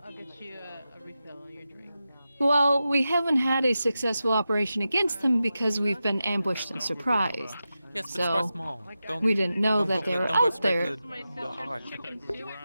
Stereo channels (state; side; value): inverted; both; correlation -0.91